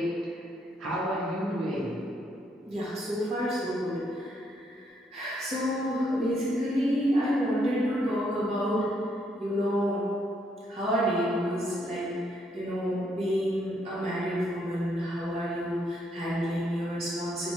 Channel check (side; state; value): both; normal; correlation 0.73